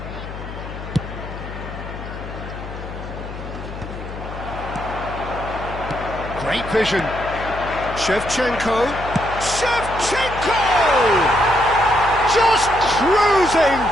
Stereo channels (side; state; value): left; noise; hum, 10 dB below the sound